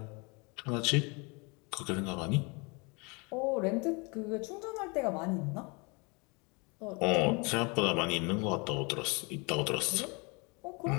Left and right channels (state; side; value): quieter; right; 29.9 dB